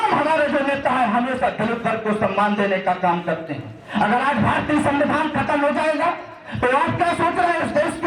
हमारे जो नेता है हमेशा दलित वर्ग को सम्मान देने का काम करते हैं। अगर आज भारतीय संविधान खत्म हो जाएगा तो आप क्या सोच रहे हैं? इस देश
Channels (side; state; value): both; identical; correlation 1.00